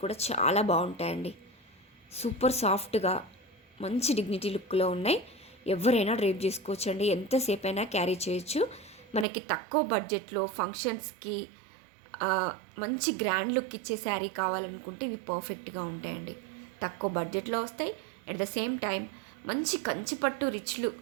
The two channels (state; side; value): drops out; left; at 9.2 s